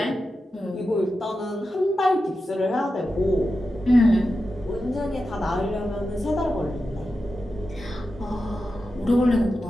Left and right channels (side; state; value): both; normal; correlation 0.91